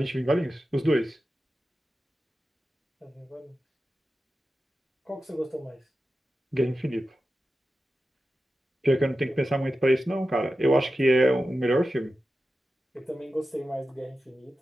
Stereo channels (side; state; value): both; normal; correlation 0.93